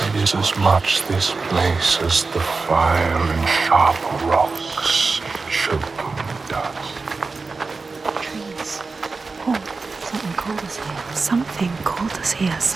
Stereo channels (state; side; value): quieter; left; 4.1 dB